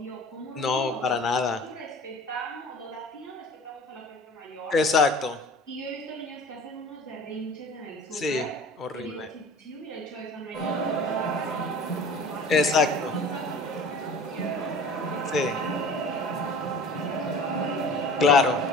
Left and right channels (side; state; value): both; normal; correlation 0.43